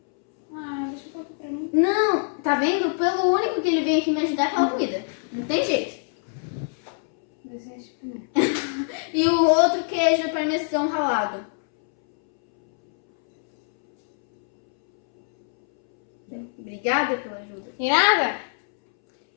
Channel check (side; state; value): right; silent; 63 dB below the other